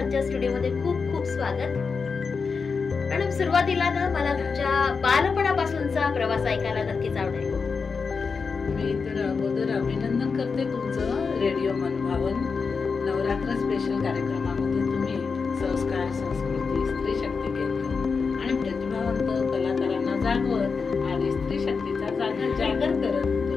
स्टुडिओमध्ये खूप खूप स्वागत. मॅडम, सुरुवातीला ना मला तुमच्या बालपणापासूनचा प्रवास ऐकायला नक्कीच आवडेल. मी तर अगोदर अभिनंदन करते तुमचं रेडिओ मनभावन नवरात्र स्पेशल कार्यक्रमामध्ये तुम्ही संस्कार, संस्कृती, स्त्री शक्ती केंद्र आणि प्रतिभावंत कलाकारांना जागवत आणि स्त्री शक्तीचा जागर करत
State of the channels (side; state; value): right; quieter; 5.1 dB